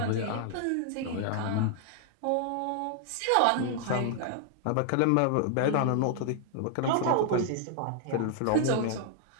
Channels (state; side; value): different; both; correlation 0.00